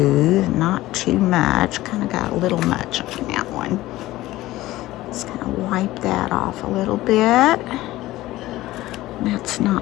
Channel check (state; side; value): quieter; right; 16.8 dB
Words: not too much. Kind of got a little much on that one. Just kind of wipe that off a little bit. That's